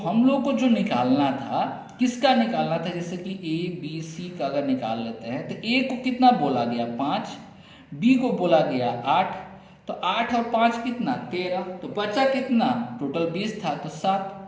लोग को जो निकालना था, किसका निकालना था, जैसे कि ए बी सी का अगर निकाल लेते हैं तो ए को कितना बोला गया 5, बी को बोला गया 8, तो 8 और 5 कितना 13, तो बचा कितना, टोटल 20 था तो 7,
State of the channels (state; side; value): identical; both; correlation 1.00